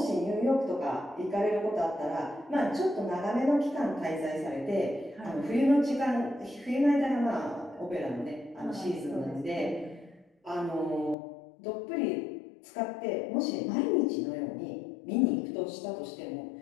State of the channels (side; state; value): right; drops out; at 11.2 s